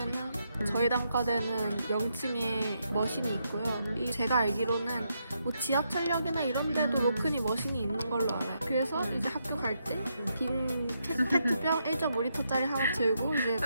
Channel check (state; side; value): inverted; both; correlation -0.80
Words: 저희 단과대는 0층에 머신이 있고요. 제가 알기로는 뭐 지하철역이나 이런 데도 로큰이 머신이 있는 걸로 알아요. 그래서 이제 학교 갈 때 빈 페트병 1.5리터짜리 하나 들고 이제